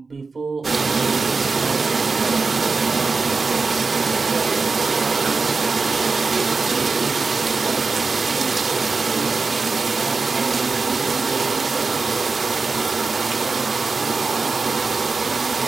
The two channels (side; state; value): left; quieter; 4.3 dB